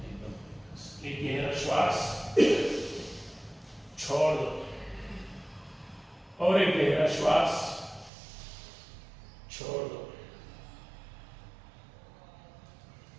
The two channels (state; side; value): drops out; left; at 8.1 s